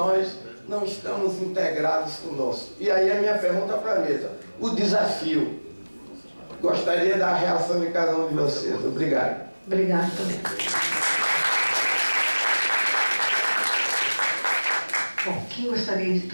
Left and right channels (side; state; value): both; inverted; correlation -1.00